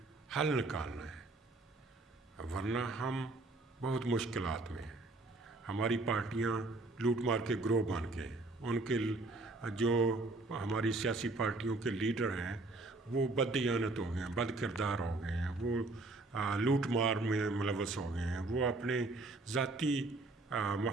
حل نکالنا ہے، ورنہ ہم بہت مشکلات میں ہیں۔ ہماری پارٹیاں لوٹ مار کے گروہ بن گئے، ان کے جو ہماری سیاسی پارٹیوں کے لیڈر ہیں وہ بددیانت ہو گئے ہیں، بد کردار ہو گئے ہیں، وہ لوٹ مار میں ملوث ہو گئے ہیں، وہ اپنے ذاتی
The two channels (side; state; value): left; quieter; 3.1 dB